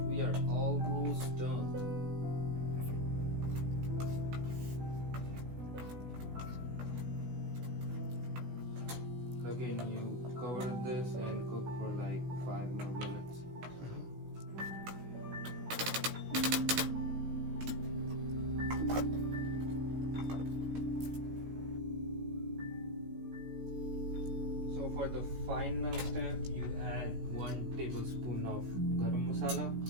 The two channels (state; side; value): late; left; 16 ms